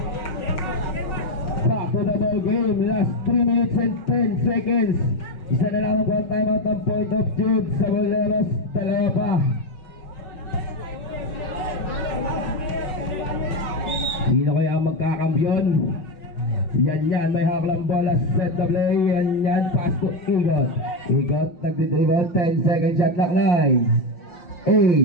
Back to the ball game. Last 3 minutes and 10 seconds. Isa na lamang po ang timeout ng Point of Truth sa Boleros. Dalawa pa. Sino kaya ang magkakambyon? Yan, may haklang bola, set the play, yan, pass to Igot. Igot, nagdidribble, 10 second shot, lock 9,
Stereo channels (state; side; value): late; right; 5.7 ms